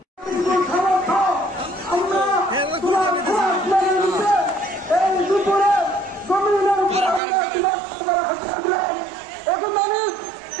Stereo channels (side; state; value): left; drops out; at 7.2 s